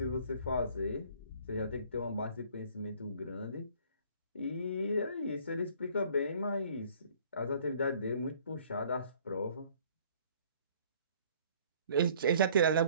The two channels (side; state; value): both; inverted; correlation -0.56